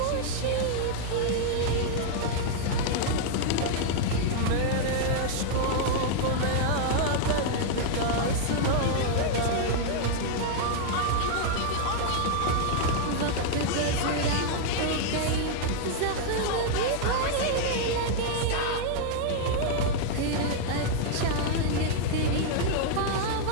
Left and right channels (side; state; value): both; different; correlation -0.01